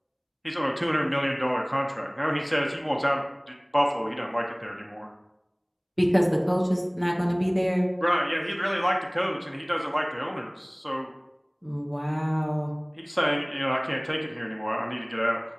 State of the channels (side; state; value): both; identical; correlation 1.00